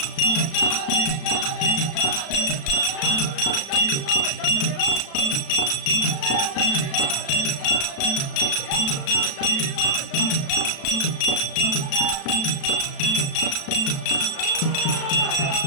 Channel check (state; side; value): late; right; 36 ms